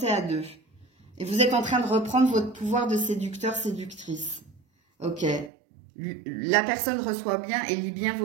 à deux. Et vous êtes en train de reprendre votre pouvoir de séducteur, séductrice. Ok. La personne reçoit bien et lit bien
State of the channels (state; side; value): drops out; left; at 5.5 s